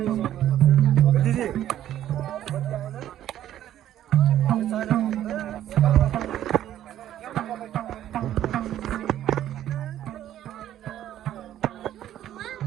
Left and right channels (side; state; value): left; quieter; 11.9 dB